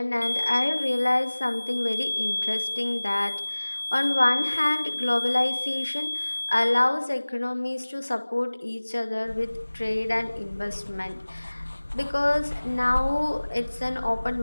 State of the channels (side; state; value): both; inverted; correlation -1.00